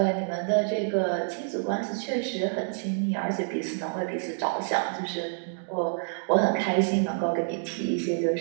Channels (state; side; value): silent; left; digital silence